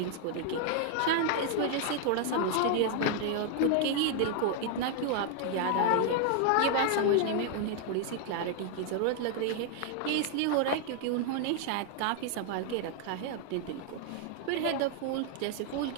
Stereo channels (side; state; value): both; different; correlation 0.00